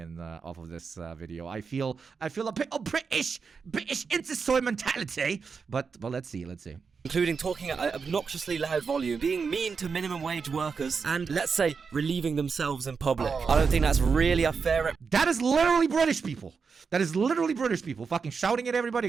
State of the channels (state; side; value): quieter; left; 5.4 dB